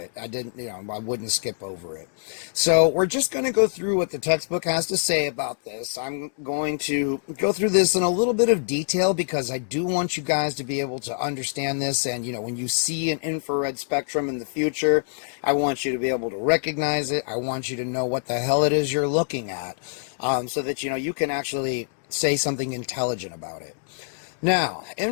I wouldn't skip over it. So we're just going to go through what the textbook has to say about this. I'm going to go through this in a little bit of detail because I do want you guys to be able to understand this, and when you see an infrared spectrum in the future, I want you to be able to recognize it. I want you to know what the hell it is you're looking at, so that you can actually say something intelligent about it. Now,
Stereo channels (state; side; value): silent; right; digital silence